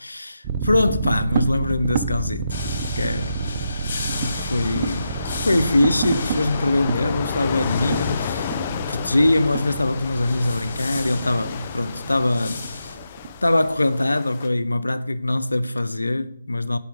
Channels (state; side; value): inverted; both; correlation -0.86